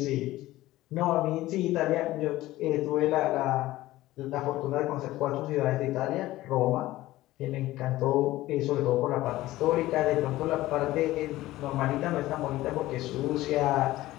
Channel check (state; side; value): quieter; right; 16.6 dB